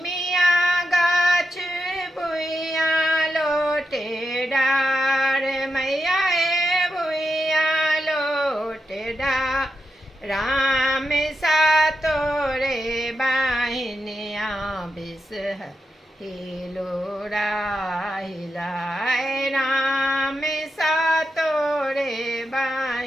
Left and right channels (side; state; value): both; normal; correlation 0.86